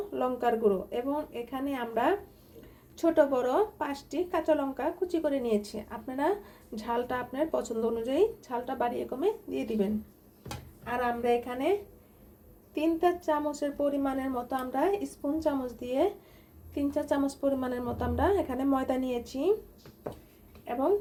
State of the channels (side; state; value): both; identical; correlation 1.00